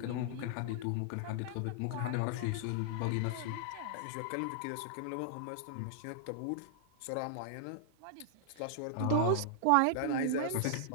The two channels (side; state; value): both; different; correlation -0.01